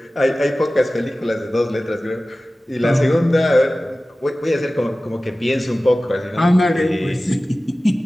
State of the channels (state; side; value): normal; both; correlation 0.97